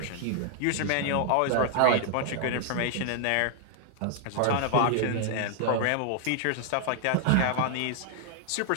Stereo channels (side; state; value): both; different; correlation 0.00